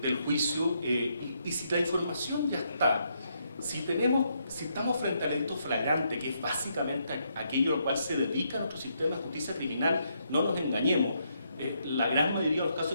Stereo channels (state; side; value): inverted; both; correlation -0.77